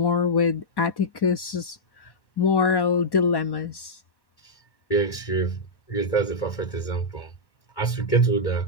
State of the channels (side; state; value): right; late; 1.1 ms